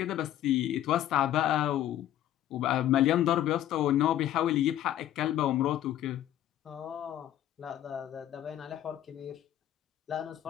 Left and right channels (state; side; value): quieter; right; 12.3 dB